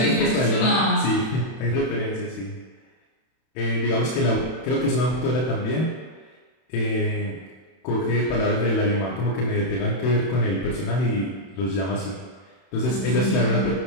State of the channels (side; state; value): right; late; 31 ms